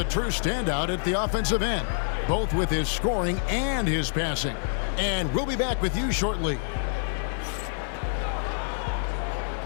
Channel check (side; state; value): right; silent; 60 dB below the other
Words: true standout at the offensive end, both with his scoring and his passing. And we'll be back with you shortly.